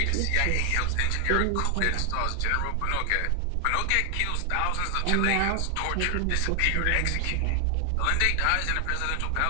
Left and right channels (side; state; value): both; different; correlation 0.00